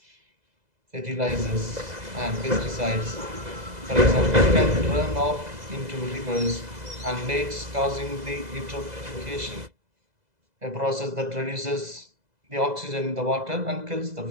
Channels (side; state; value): left; late; 2.0 ms